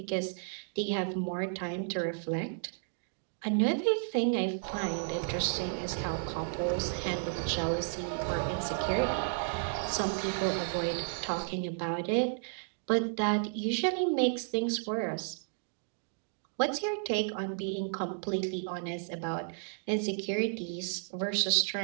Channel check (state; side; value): silent; left; digital silence